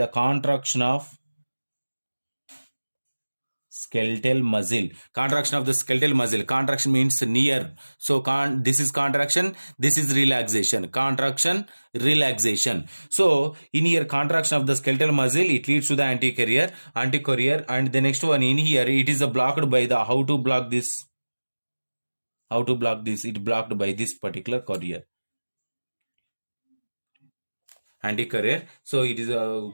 contraction of skeletal muscle. Contraction of the skeletal muscle. Contraction means near. So this is contraction, this is relaxation. Contraction, relaxation. So in here contraction of the skeletal muscle, it leads to the anti-carrier. And the next one in here, it is blocked by the, how to block this? How to block this? It blocked by this particular carrier, anti-career. So it is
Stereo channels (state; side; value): inverted; both; correlation -1.00